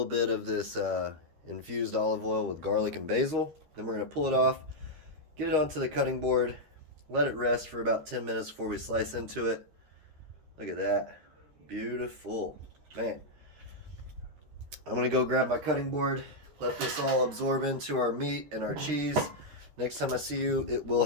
bit of this infused olive oil with garlic and basil. Then we're going to pull it off, get it onto the cutting board, let it rest for about 10 minutes before we slice into it. Look at that. Beautiful. Man. I'm going to go grab my cutting board, let this all absorb into our meat and our cheese. Next time I see you, it will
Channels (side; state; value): left; late; 13 ms